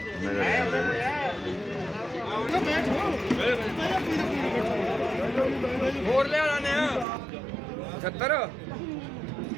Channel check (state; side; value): drops out; left; at 7.1 s